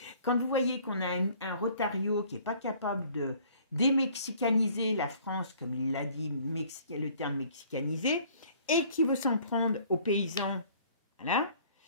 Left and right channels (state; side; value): inverted; both; correlation -0.55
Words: quand vous voyez qu'on a un Rotario qui n'est pas capable de démexicaniser la France, comme il l'a dit, le terme mexicaniser, et qui veut s'en prendre aux paysans, voilà,